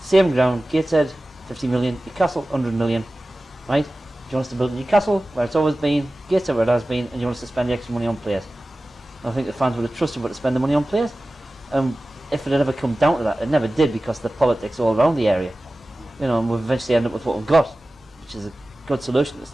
ground, Gateshead, 50 million, Newcastle, 100 million, right? Do you want us to build Newcastle, where it's always been, Gateshead, where it has been, and you want us to spend the extra money on players? I think the fans would have trusted us to spend the money on players. If it had ever come down to that, it never did because of the politics all around the area. You know, and we've eventually ended up with what we've got, which is a good solution. It's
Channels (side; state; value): both; normal; correlation 0.96